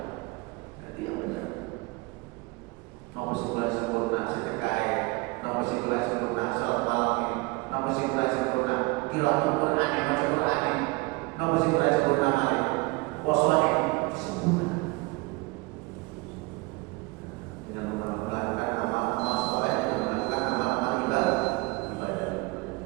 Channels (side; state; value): left; quieter; 24.8 dB